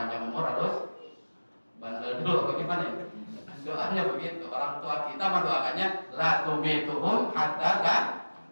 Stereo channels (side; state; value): both; inverted; correlation -1.00